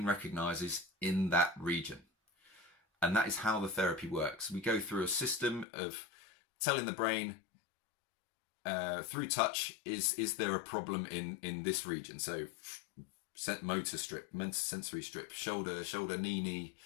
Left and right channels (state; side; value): drops out; right; at 5.7 s